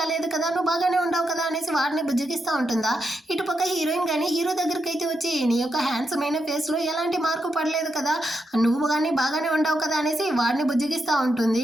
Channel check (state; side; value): normal; both; correlation 0.84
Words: కదా, నువ్వు బాగానే ఉండవు కదా అనేసి వాడిని బుజ్జగిస్తూ ఉంటుందా. ఇటుపక్క హీరోయిన్ కానీ హీరో దగ్గరికి అయితే వచ్చి, నీ యొక్క హ్యాండ్సమ్ అయిన ఫేస్ లో ఎలాంటి మార్పు పడలేదు కదా, నువ్వు కానీ బాగానే ఉండవు కదా అనేసి వాడిని బుజ్జగిస్తూ ఉంటుంది.